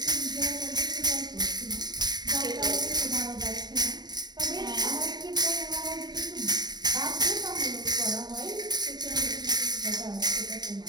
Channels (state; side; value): late; left; 0.20 ms